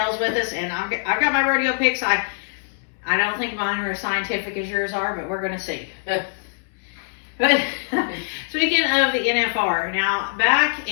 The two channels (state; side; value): silent; right; 64 dB below the other